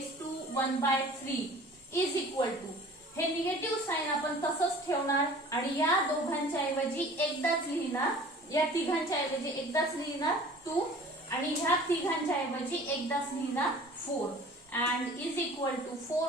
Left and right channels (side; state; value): both; normal; correlation 0.46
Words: to 1/3 is equal to, हे निगेटिव्ह साइन आपण तसंच ठेवणार आणि या दोघांच्या ऐवजी एकदाच लिहिणार या तिघांच्या ऐवजी एकदाच लिहिणार 2 आणि ह्या तिघांच्या ऐवजी एकदाच लिहिणार 4 and is equal to